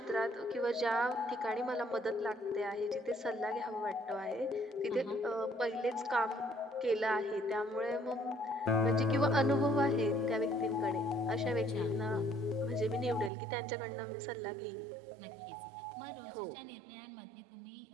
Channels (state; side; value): drops out; left; at 13.3 s